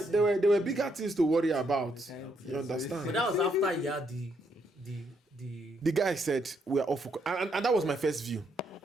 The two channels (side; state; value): both; normal; correlation 0.75